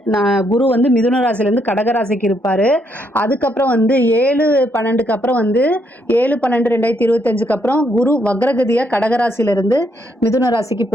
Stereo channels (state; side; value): normal; both; correlation 0.75